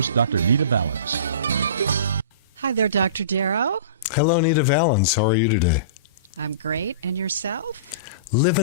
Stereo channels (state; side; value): inverted; both; correlation -0.37